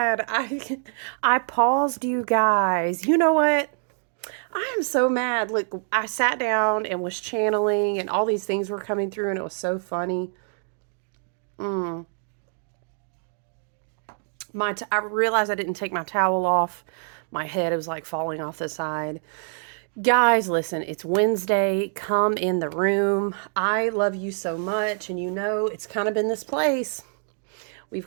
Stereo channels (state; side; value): silent; left; 62 dB below the other